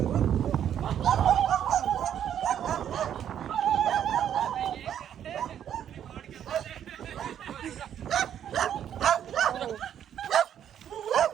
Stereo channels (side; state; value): left; quieter; 9.8 dB